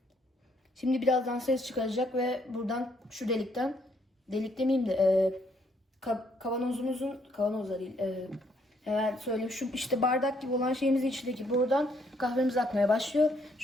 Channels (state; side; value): normal; both; correlation 0.70